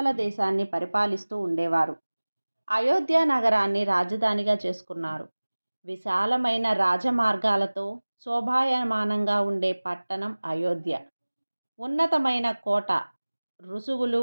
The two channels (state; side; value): inverted; both; correlation -1.00